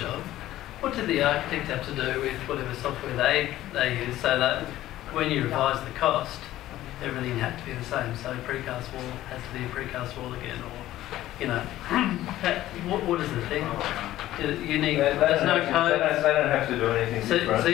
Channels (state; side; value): quieter; right; 14.5 dB